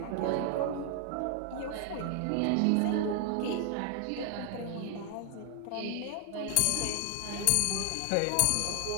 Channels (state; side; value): different; both; correlation 0.00